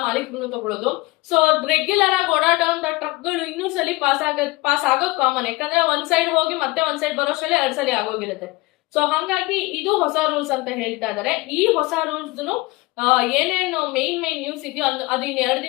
ಮಾಲೀಕರು ತಗೊಳ್ಳೋದು. ಸೊ ರೆಗ್ಯುಲರ್ ಆಗಿ ಓಡಾಡುವಂತ ಟ್ರಕ್ಗಳು 200 ಸಲ ಪಾಸ್ ಆಗೋದು ಕಾಮನ್. ಯಾಕಂದ್ರೆ ಒಂದ್ ಸೈಡ್ ಹೋಗಿ ಮತ್ತೆ ಒಂದ್ ಸೈಡ್ ಬರೋಷ್ಟರಲ್ಲಿ 2 ಸಲ ಆಗೋಗಿರುತ್ತೆ. ಸೊ ಹಂಗಾಗಿ ಇದು ಹೊಸ ರೂಲ್ಸ್ ಅಂತ ಹೇಳ್ತಾ ಇದಾರೆ. ಈ ಹೊಸ ರೂಲ್ಸ್ ಏನೇನು ಮೇನ್ ನ್ಯೂಸ್ ಇದೆಯೋ ಅದು ಇನ್ನು 2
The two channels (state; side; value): quieter; right; 22.6 dB